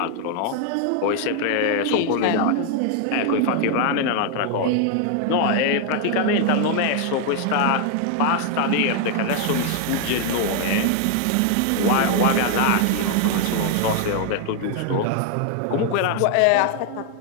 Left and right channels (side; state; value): both; different; correlation 0.00